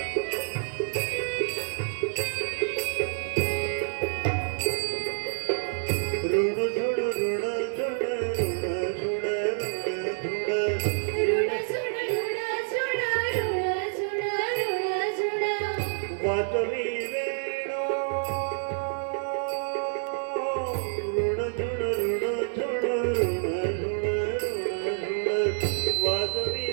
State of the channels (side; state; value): left; silent; digital silence